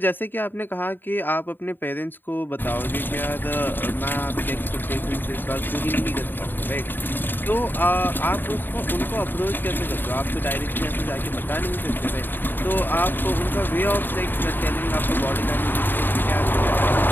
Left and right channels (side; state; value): right; late; 0.093 ms